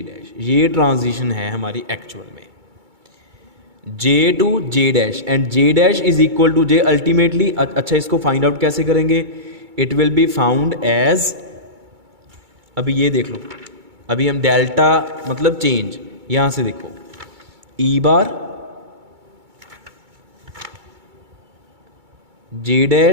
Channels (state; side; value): late; left; 2.3 ms